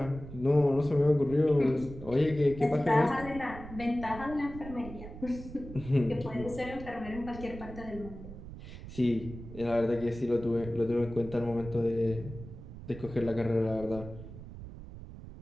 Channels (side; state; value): right; noise; rumble, 13 dB below the sound